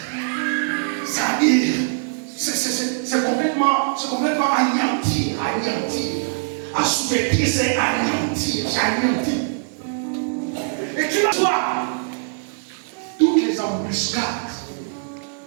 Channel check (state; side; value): silent; left; digital silence